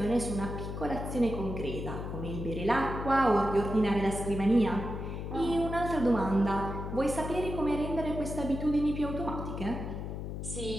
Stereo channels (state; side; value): noise; left; hum, 6 dB below the sound